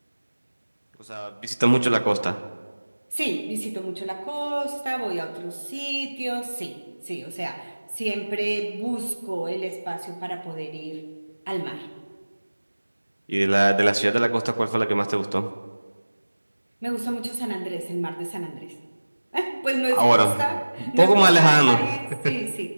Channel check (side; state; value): both; inverted; correlation -1.00